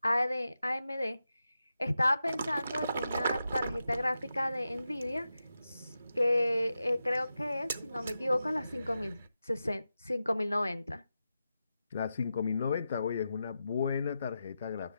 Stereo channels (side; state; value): both; inverted; correlation -0.90